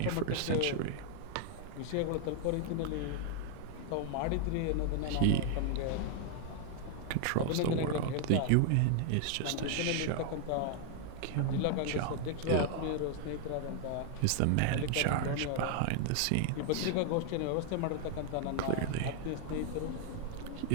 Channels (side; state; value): both; different; correlation 0.00